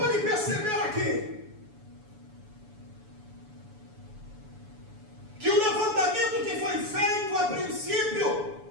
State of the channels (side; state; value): left; late; 7.0 ms